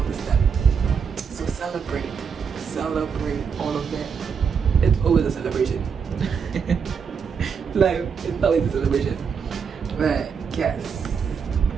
the step. So celebrate all of them. It's always a celebration. Like, it's always a celebration. But yes,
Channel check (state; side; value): quieter; left; 6.4 dB